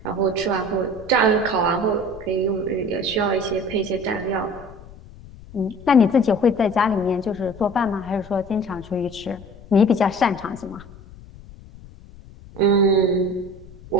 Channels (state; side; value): noise; left; rumble, 19 dB below the sound